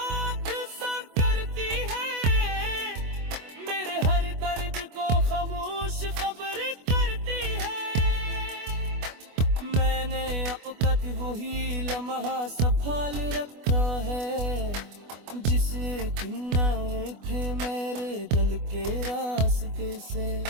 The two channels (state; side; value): late; left; 24 ms